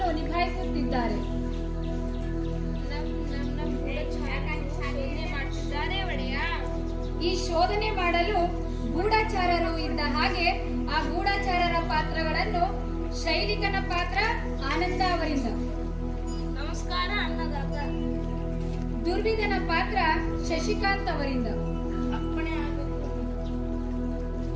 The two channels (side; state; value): both; identical; correlation 1.00